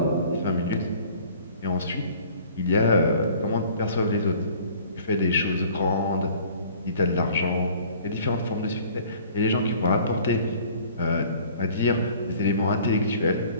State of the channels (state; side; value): inverted; both; correlation -0.51